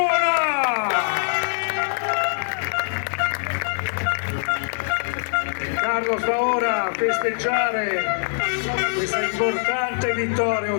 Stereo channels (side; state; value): right; silent; digital silence